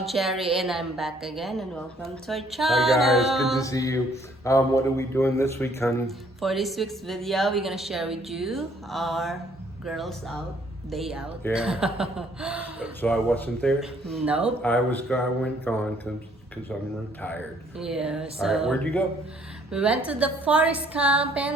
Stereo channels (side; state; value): both; normal; correlation 0.63